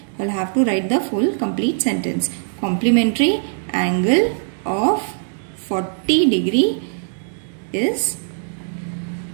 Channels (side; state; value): left; silent; digital silence